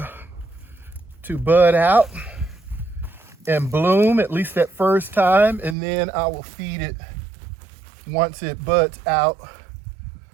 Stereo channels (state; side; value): drops out; left; at 5.8 s